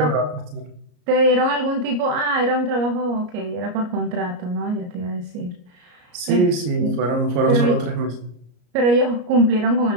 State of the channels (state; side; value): late; left; 34 ms